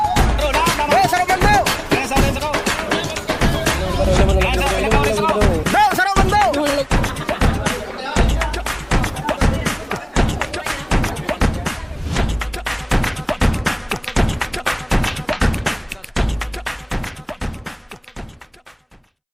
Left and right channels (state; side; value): identical; both; correlation 1.00